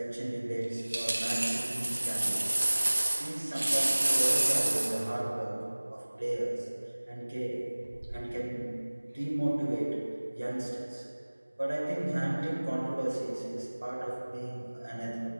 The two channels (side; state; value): both; inverted; correlation -1.00